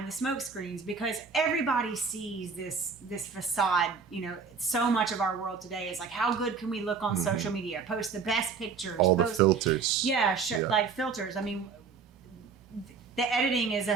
the smoke screens, because everybody sees this facade. So much of our world today is like, how good can we look on social media? Post the best pictures. All the filters. Yeah, like filters. I mean, the editing is a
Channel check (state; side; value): quieter; left; 5.5 dB